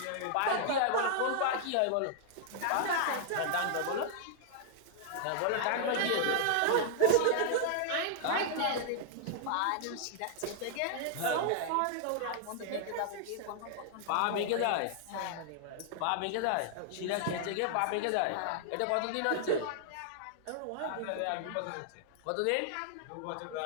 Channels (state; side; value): different; both; correlation -0.01